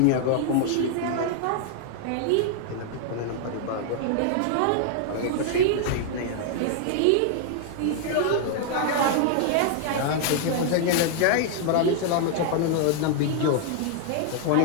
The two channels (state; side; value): different; both; correlation 0.00